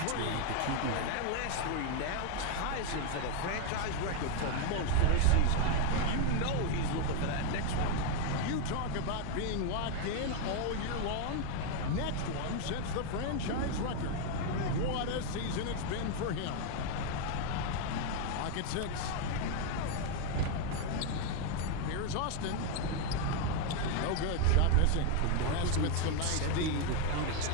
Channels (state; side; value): different; both; correlation 0.01